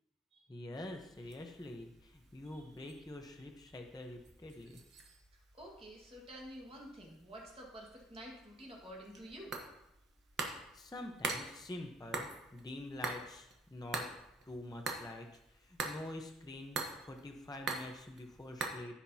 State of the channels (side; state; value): both; normal; correlation 0.57